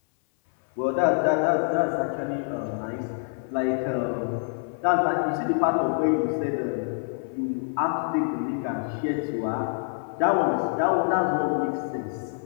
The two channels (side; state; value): right; silent; 59 dB below the other